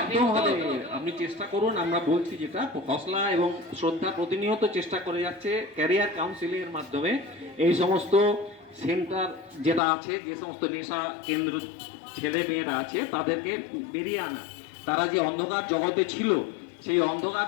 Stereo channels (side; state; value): right; drops out; at 9.8 s